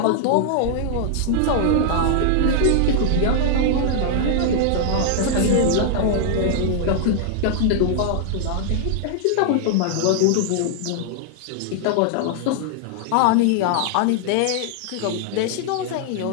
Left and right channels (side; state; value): both; different; correlation -0.01